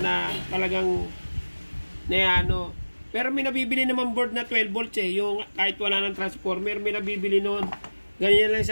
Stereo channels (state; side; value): inverted; both; correlation -1.00